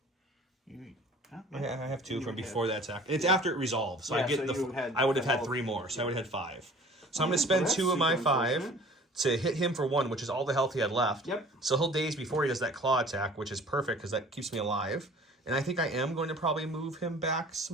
Huh? I have 2 from before that attack. It's after it resolves, so Yeah, I get so I would have had 3 more, so I would have had 5. So I'm going to spend 2 of my 5 to hit him for 1, which is all the health he had left. Yep. So he'll daze before he does that claw attack, which is perfect because that keeps me alive. And I think I am going to probably move him back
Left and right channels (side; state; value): both; normal; correlation 0.48